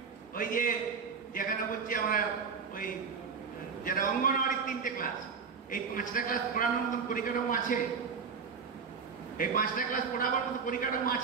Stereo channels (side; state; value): left; quieter; 5.7 dB